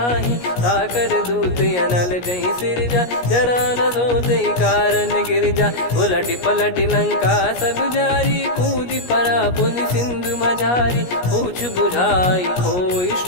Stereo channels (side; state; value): right; late; 17 ms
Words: ताकर दूत अनल जय सिरजा जरा न सोते कारण गिरजा उलट पलट लंका सब जारी कूदी परा पुनि सिंधु मझारी पूछ बुझाई खोई